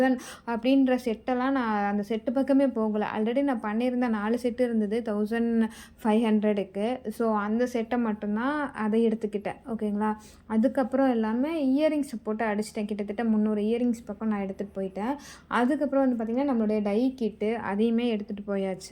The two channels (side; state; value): both; identical; correlation 1.00